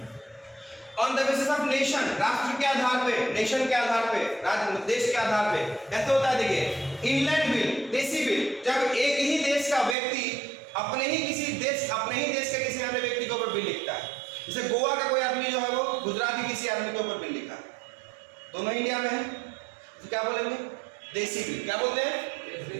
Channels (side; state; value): left; drops out; at 10.0 s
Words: On the basis of nation, राष्ट्र के आधार पे, नेशन के आधार पे, राज्य देश के आधार पे। ऐसे होता है, देखिए इंग्लैंड बिल, देसी बिल, जब एक ही देश का व्यक्ति अपने ही देश के किसी अन्य व्यक्ति के ऊपर बिल लिखता है। जैसे गोवा का कोई आदमी जो है वो गुजरात के किसी आदमी के ऊपर बिल लिखा, दोनों इंडिया में है, तो क्या बोलेंगे? देसी बिल। क्या बोलते हैं?